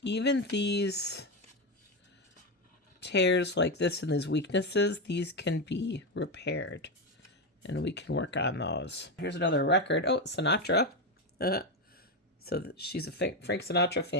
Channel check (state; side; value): normal; both; correlation 0.11